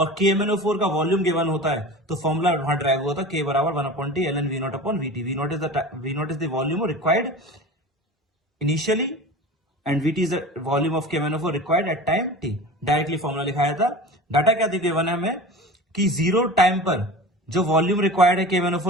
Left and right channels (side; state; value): both; normal; correlation 0.35